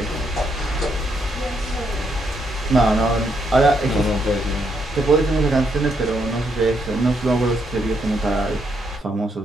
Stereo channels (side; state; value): both; normal; correlation 0.76